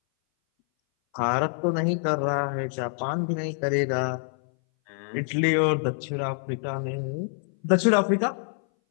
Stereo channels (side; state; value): right; silent; 59 dB below the other